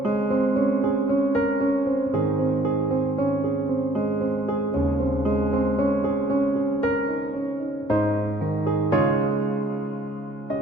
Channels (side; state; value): both; normal; correlation 0.58